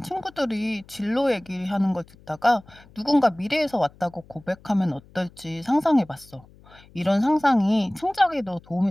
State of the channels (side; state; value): left; noise; hum, 25 dB below the sound